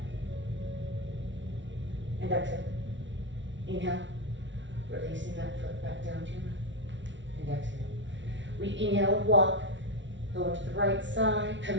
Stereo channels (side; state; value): left; late; 0.55 ms